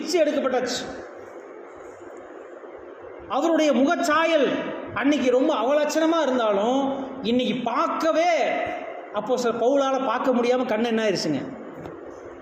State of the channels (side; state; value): both; identical; correlation 1.00